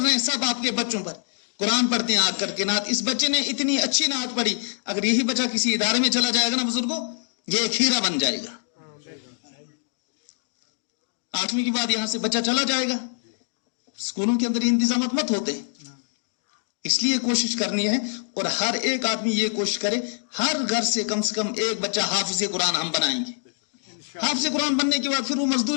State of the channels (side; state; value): right; silent; 62 dB below the other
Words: ہیں سب آپ کے بچوں پر. قرآن پڑھتے ہیں آج کر کے نعت. اس بچے نے اتنی اچھی نعت پڑھی، اگر یہی بچہ کسی ادارے میں چلا جائے گا نا بزرگوں، یہ ایک ہیرا بن جائے گا. 8ویں کے بعد یہاں سے بچہ چلا جائے گا. اسکولوں کے اندر انتظامات مت ہوتے ہیں. اس لیے کوشش کرنی ہے اور ہر ایک آدمی یہ کوشش کرے ہر گھر سے کم ایک بچہ حافظ قرآن ہم بنائیں گے. حافظ قرآن بننے کے بعد پھر وہ